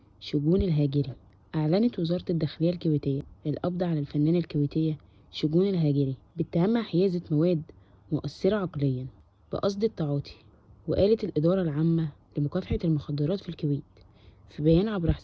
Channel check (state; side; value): identical; both; correlation 1.00